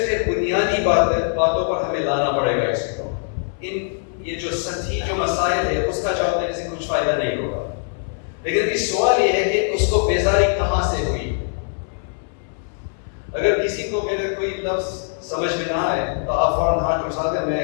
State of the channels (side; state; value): right; silent; 61 dB below the other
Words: پھر بنیادی باتوں پر ہمیں لانا پڑے گا اس کو. یہ جو سطحی جو مسائل ہے اس کا جواب دینے سے کچھ فائدہ نہیں ہوگا. لیکن اس سوال یہ ہے کہ اس کو بیزاری کہاں سے ہوئی. اگر کسی کو میرے کوئی لفظ سمجھ میں نہ آئے تو آپ فوراً ہاتھ اٹھا دیں، میں